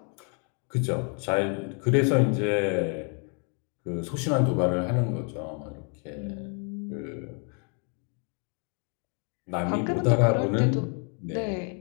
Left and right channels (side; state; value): right; quieter; 38.8 dB